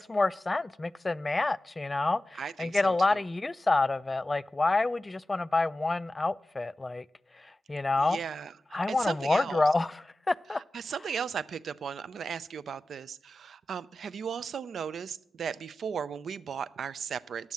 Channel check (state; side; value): normal; both; correlation 0.94